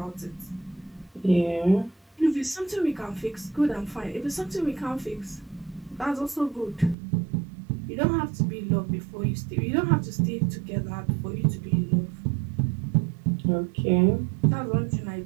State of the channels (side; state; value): left; drops out; at 7.0 s